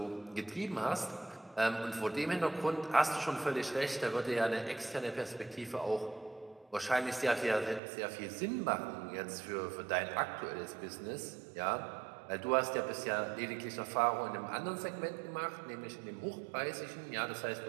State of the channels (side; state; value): left; drops out; at 7.8 s